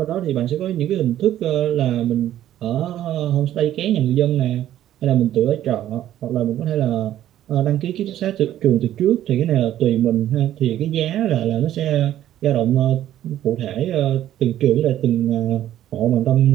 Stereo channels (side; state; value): left; quieter; 12.3 dB